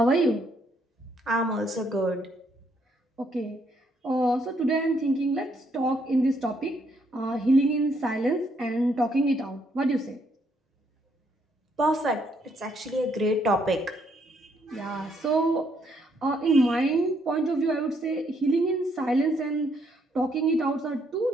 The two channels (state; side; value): normal; both; correlation 0.71